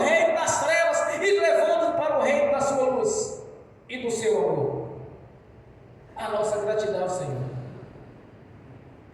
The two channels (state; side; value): identical; both; correlation 1.00